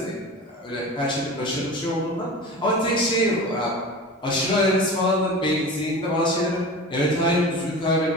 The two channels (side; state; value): both; normal; correlation 0.33